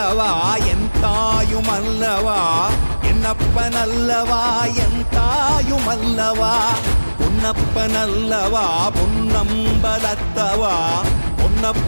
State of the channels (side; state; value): both; inverted; correlation -1.00